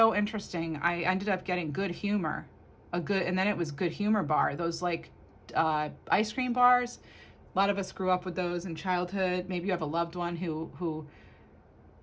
interesting. I ended up getting good humor, and then it was good humor bar. Those like ice cream bars. A lot of us grew up with those in childhood. Maybe you have a loved one who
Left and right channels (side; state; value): both; identical; correlation 1.00